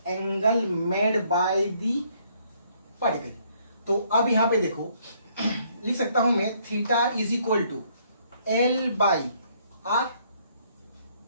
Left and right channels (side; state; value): both; inverted; correlation -0.66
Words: angle made by the particle. तो अब यहां पे देखो, लिख सकता हूं मैं theta is equal to L by R।